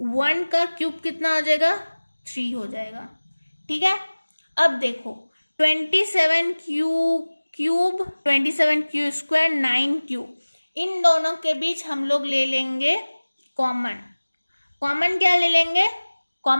1 का क्यूब कितना हो जाएगा 3 हो जाएगा। ठीक है, अब देखो 27q क्यूब 27q², 9q, इन दोनों के बीच हम लोग ले लेंगे कॉमन क्या ले लेंगे,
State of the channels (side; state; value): both; inverted; correlation -1.00